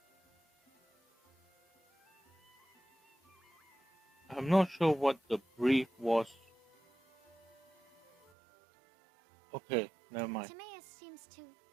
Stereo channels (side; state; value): left; drops out; at 8.3 s